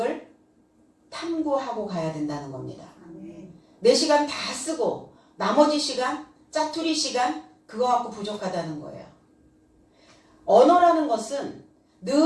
탐구하고 가야 된다는 겁니다. 내 시간 다 쓰고 나머지 시간, 짜투리 시간 그거 갖고 부족하다는 거예요. 언어라는 것은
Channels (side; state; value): both; identical; correlation 1.00